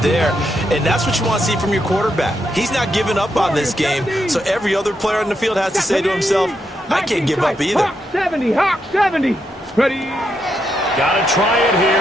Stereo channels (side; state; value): both; normal; correlation 0.81